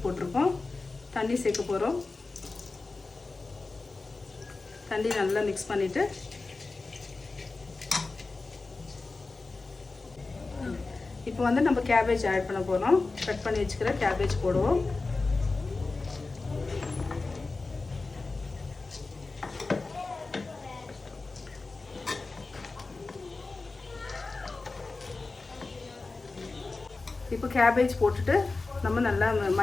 போட்டிருக்கோம். தண்ணி சேர்க்க போகிறோம். தண்ணி நல்லா மிக்ஸ் பண்ணிவிட்டு இப்போ நம்ம கேபேஜ் ஆட் பண்ண போகிறோம். கட் பண்ணி வச்சுக்கிற கேபேஜ் போடுவோம். இப்போ கேபேஜ் போட்டுட்டு நம்ம நல்லா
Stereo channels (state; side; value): quieter; right; 3.7 dB